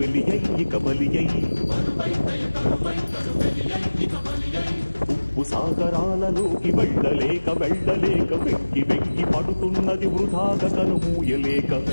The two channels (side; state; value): both; inverted; correlation -1.00